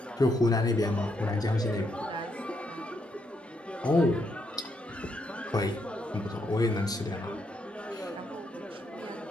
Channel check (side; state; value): both; normal; correlation 0.77